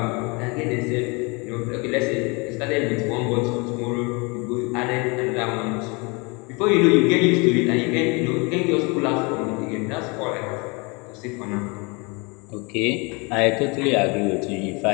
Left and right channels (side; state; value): right; quieter; 29.2 dB